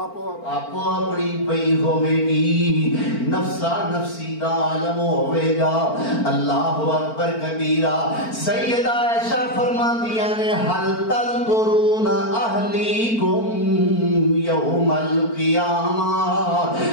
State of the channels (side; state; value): right; late; 4.4 ms